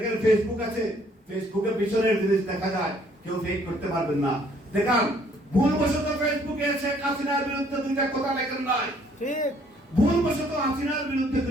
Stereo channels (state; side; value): normal; both; correlation 0.63